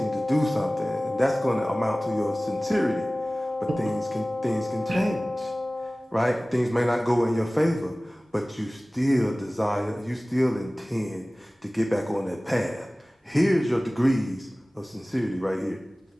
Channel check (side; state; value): both; normal; correlation 0.98